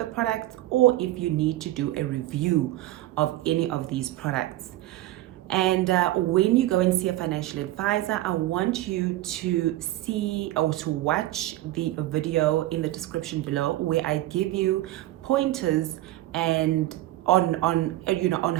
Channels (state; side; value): quieter; left; 15.9 dB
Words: products, or if you need to do a review of any of these products. And when you go and see a financial advisor, I want you to see or to watch the video in the description below, where I give you pointers and on